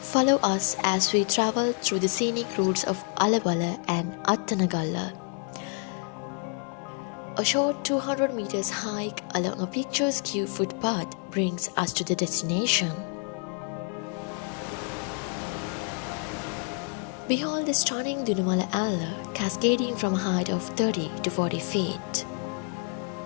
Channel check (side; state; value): right; quieter; 37.3 dB